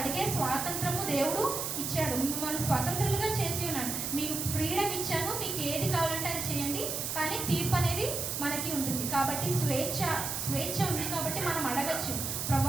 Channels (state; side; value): noise; right; hiss, 2 dB below the sound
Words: స్వాతంత్రము దేవుడు ఇచ్చాడు. మిమ్మల్ని స్వతంత్రులుగా చేసి ఉన్నాడు. మీకు ఫ్రీడమ్ ఇచ్చాను, మీకు ఏది కావాలంటే అది చేయండి, కానీ తీర్పు అనేది మనకి ఉంటుంది. కాబట్టి స్వేచ్ఛ ఉంది. కాబట్టి మనం అడగచ్చు,